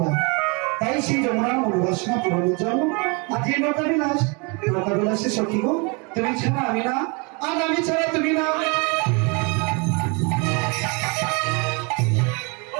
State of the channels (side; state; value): left; quieter; 31.0 dB